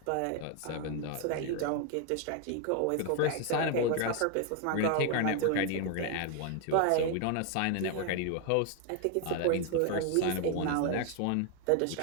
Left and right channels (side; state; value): both; different; correlation 0.00